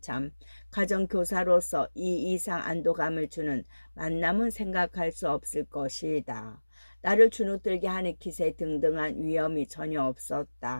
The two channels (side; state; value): both; inverted; correlation -1.00